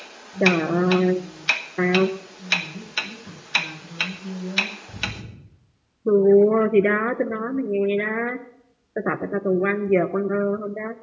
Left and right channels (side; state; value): both; identical; correlation 1.00